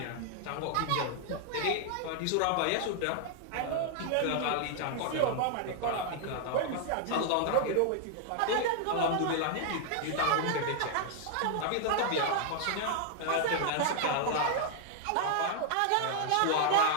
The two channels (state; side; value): different; both; correlation 0.00